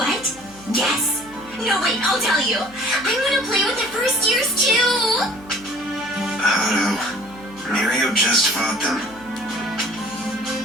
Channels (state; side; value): noise; right; hum, 23 dB below the sound